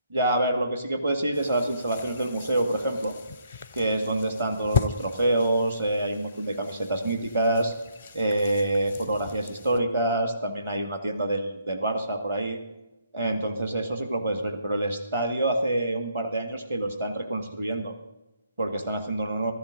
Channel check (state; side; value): inverted; both; correlation -0.71